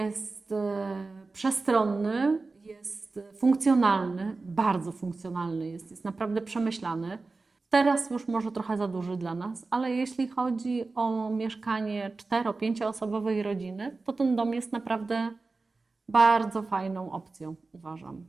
przestronny, jest funkcjonalny, bardzo funkcjonalny jest naprawdę przemyślany. Teraz już może trochę za duży dla nas, ale jeśli chodzi o mieszkanie 4-5-osobowej rodziny, to ten dom jest naprawdę bardzo fajną opcją, uważam.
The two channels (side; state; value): left; quieter; 3.7 dB